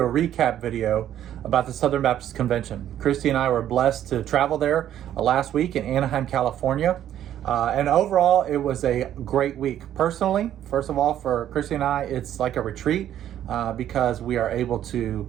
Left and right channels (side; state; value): left; quieter; 11.2 dB